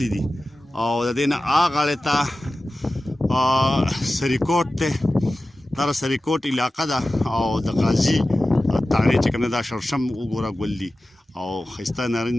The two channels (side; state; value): both; normal; correlation 0.95